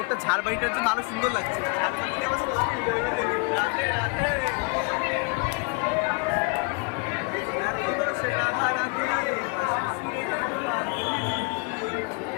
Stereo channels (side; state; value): right; quieter; 32.6 dB